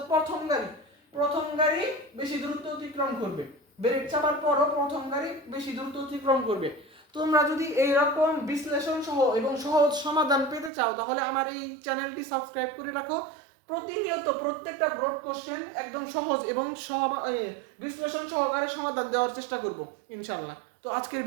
প্রথম গাড়ি বেশি দূরত্ব অতিক্রম করবে। ব্রেক চাপার পরও প্রথম গাড়ি বেশি দূরত্ব অতিক্রম করবে। তোমরা যদি এইরকম বিশ্লেষণ সহ এবং সহজ সমাধান পেতে চাও তাহলে আমার এই চ্যানেলটি সাবস্ক্রাইব করে রাখো। প্রতিনিয়ত প্রত্যেকটা ব্রড কোশ্চেন একদম সহজ এবং বিশ্লেষণ সহকারে সমাধান দেওয়ার চেষ্টা করব ইনশাআল্লাহ। তো আজকের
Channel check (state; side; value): drops out; left; at 10.7 s